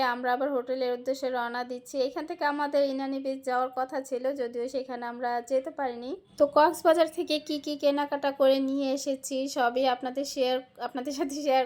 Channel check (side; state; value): both; identical; correlation 1.00